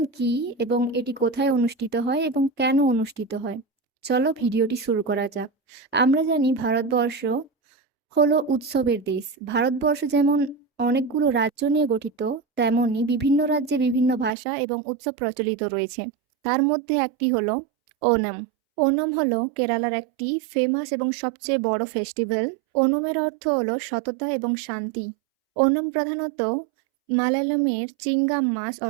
কি এবং এটি কোথায় অনুষ্ঠিত হয় এবং কেন অনুষ্ঠিত হয়? চলো ভিডিওটি শুরু করা যাক। আমরা জানি ভারতবর্ষ হলো উৎসবের দেশ। ভারতবর্ষ যেমন অনেকগুলো রাজ্য নিয়ে গঠিত, তেমনি বিভিন্ন রাজ্যে বিভিন্ন ভাষা এবং উৎসব প্রচলিত রয়েছে। তার মধ্যে একটি হলো ওনম। ওনম হলো কেরালার একটি ফেমাস এবং সবচেয়ে বড় ফেস্টিভ্যাল। ওনমের অর্থ হলো সততা এবং শান্তি। ওনম প্রধানত মালায়ালামের চিঙ্গাম মাস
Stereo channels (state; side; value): drops out; left; at 14.3 s